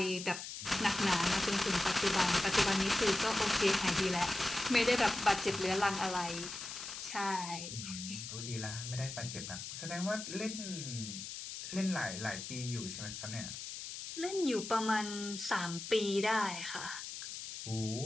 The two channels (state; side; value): noise; left; hiss, 8 dB below the sound